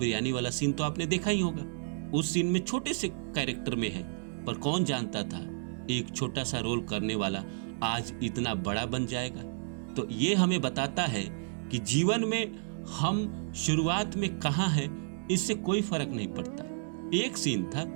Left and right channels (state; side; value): silent; left; 56 dB below the other